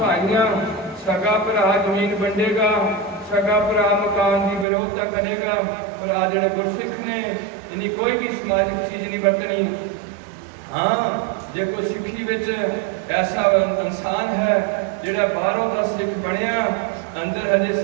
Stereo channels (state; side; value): drops out; left; at 4.7 s